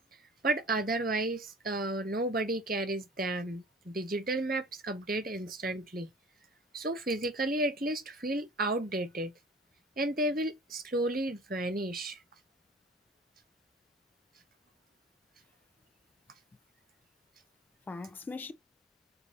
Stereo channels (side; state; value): both; normal; correlation 0.44